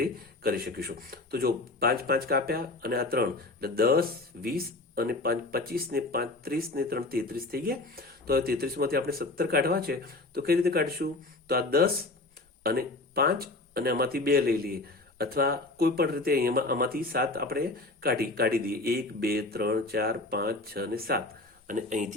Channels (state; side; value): quieter; right; 3.1 dB